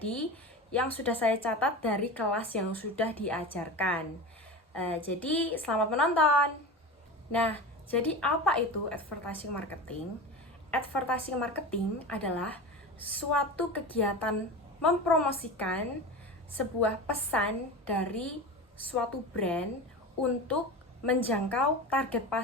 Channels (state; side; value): normal; both; correlation 0.29